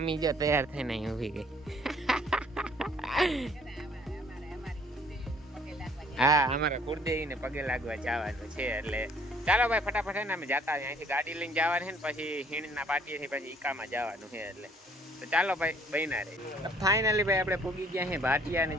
જો તૈયાર થઈને અહીં ઊભી ગઈ. હા અમારા કુળદેવી ને પગે લાગવા જવાનું છે. એટલે ચાલો ભાઈ ફટાફટ ને અમે જતા અહીંથી ગાડી લઈને જવાનું છે ને પછી હીણના પાટીએથી પછી ઈકામાં જવાનું છે. એટલે તો ચાલો ભાઈ બન્યા રહે. ફાઇનલી ભાઈ આપણે પૂગી ગયા છે ભાટિયા ને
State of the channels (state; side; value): normal; both; correlation 0.59